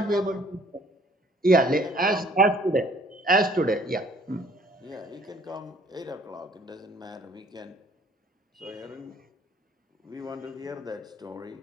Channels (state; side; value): normal; both; correlation 0.58